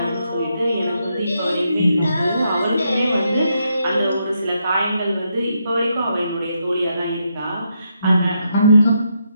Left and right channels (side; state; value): both; inverted; correlation -0.80